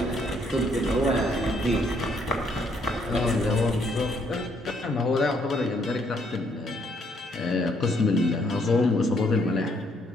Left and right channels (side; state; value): both; normal; correlation 0.69